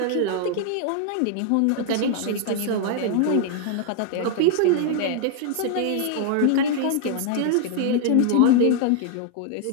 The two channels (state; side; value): different; both; correlation 0.00